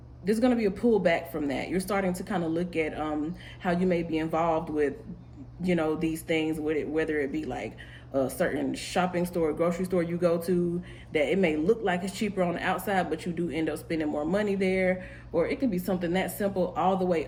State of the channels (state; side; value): identical; both; correlation 1.00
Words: There's going to be a pullback from that. You're starting to kind of look at how you may be involved with, these things, with it, whether it be like a certain shopping store, grocery store you go to, that it may look like it's cheaper on the outside, but you do end up spending more money there. Or it could be something that simple all the way